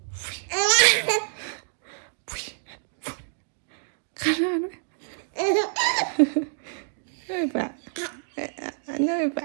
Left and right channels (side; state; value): left; silent; digital silence